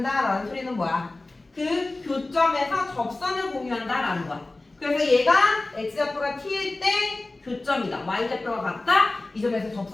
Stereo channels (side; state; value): right; quieter; 3.0 dB